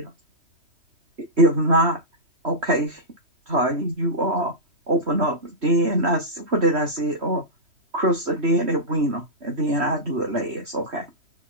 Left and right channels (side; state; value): left; late; 3.1 ms